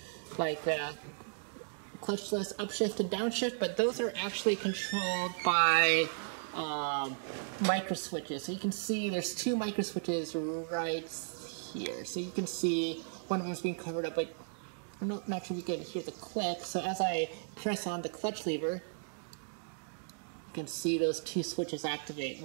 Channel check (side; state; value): left; silent; digital silence